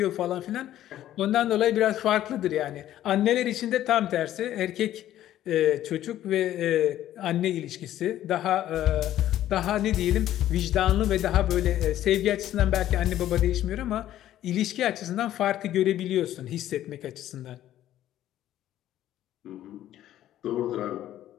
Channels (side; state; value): right; quieter; 12.7 dB